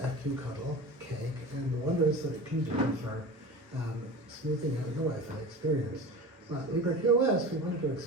FQCuddle, Cake, and the wonders that it can do for smoothing out your Wi-Fi experience. But LibreQoS, we wanted to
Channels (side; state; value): both; normal; correlation 0.33